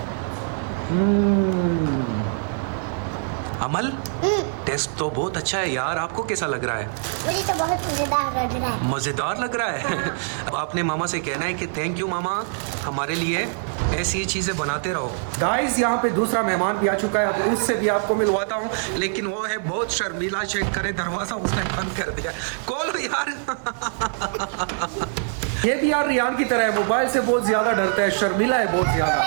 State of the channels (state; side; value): silent; left; digital silence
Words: अमल, टेस्ट तो बहुत अच्छा है यार, आपको कैसा लग रहा है? मुझे तो बहुत मजेदार लग रहा है। मज़ेदार लग रहा है। अब आपने मामा से कहना है कि थैंक यू मामा, हमारे लिए ऐसी ही चीज़ें बनाते रहो। गाइस, यहाँ पे दूसरा मेहमान भी आ चुका है, अब उससे भी आपको मिलवाता हूँ, लेकिन वो है बहुत शर्मीला। चेक करे, दरवाज़ा उसने बंद कर दिया। खोलो यार। ये भी यार रियान की तरह है, मोबाइल से बहुत ज़्यादा डरता है, शर्मीला है बहुत ज़्यादा।